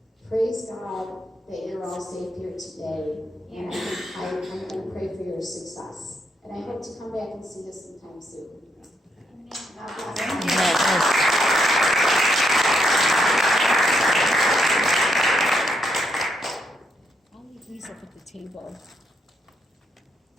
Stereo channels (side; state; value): both; normal; correlation 0.77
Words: praise God that you're all safe here today. And I'm going to pray for your success. And I hope to come back and see you sometime soon. I'll leave these up at the table.